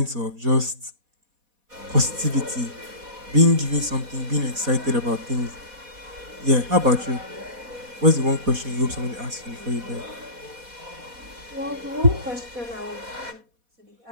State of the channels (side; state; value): left; late; 4.1 ms